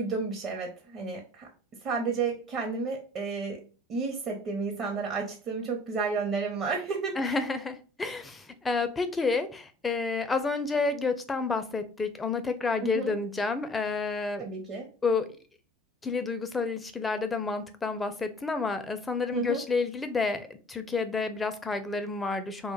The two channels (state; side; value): normal; both; correlation 0.53